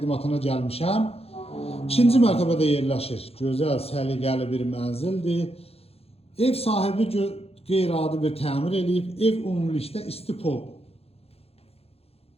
gəlmişəm. İkinci mərtəbədə yerləşir. Gözəl, səliqəli bir mənzildir. Ev sahibi qeyri-adi bir təmir eləyib. Ev ümumilikdə istipol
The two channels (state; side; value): late; right; 0.29 ms